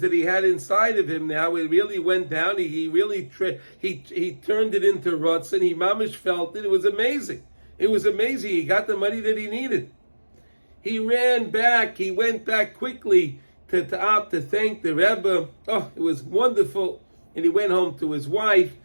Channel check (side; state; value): both; inverted; correlation -1.00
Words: he had inside of him now, it really went down. He really he turned it into rotzen. He mamish felt it. It was amazing. It was amazing. He got the money that he needed. He ran back. He went back quickly to thank the Rebbe. Oh, it was wonderful. And he went home to his wife,